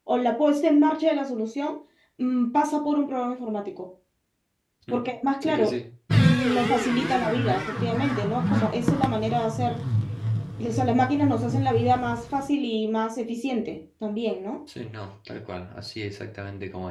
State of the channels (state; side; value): identical; both; correlation 1.00